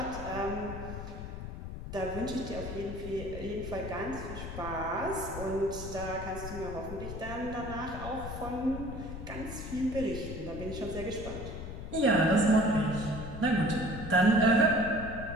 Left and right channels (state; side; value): noise; left; rumble, 8 dB below the sound